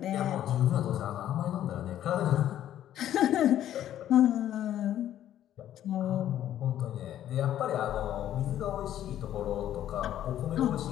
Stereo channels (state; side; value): quieter; right; 11.7 dB